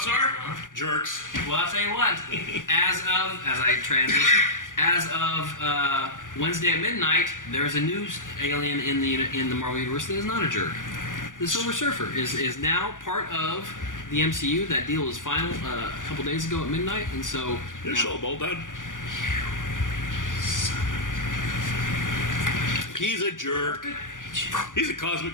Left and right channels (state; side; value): late; right; 0.88 ms